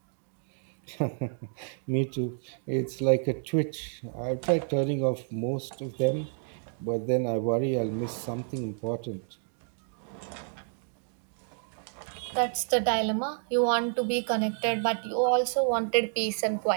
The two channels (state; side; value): silent; left; 58 dB below the other